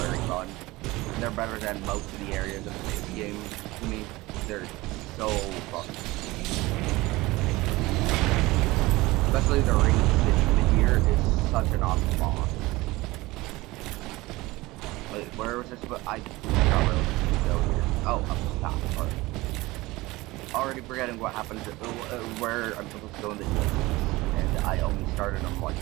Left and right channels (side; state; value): left; quieter; 20.5 dB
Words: fun. They're better than most of the areas of this game to me. They're so fun. Especially the Ring City here is such an awesome boss. Wait, where was this? I forgot where it was supposed to go here. Oh, up the top. Alright. Already forgetting what happened to where I'm supposed to go in the DLC. And I only started them